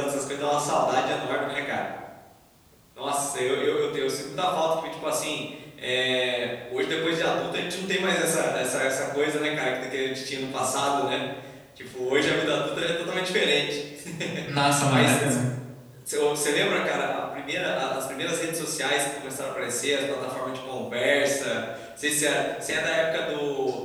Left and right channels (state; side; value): identical; both; correlation 1.00